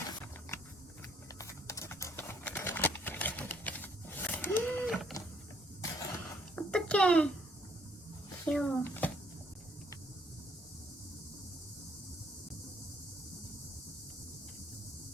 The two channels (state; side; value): normal; both; correlation 0.66